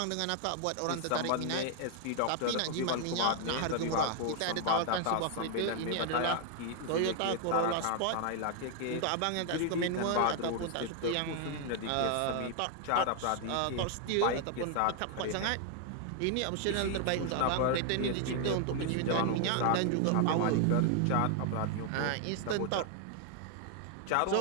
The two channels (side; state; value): both; different; correlation 0.00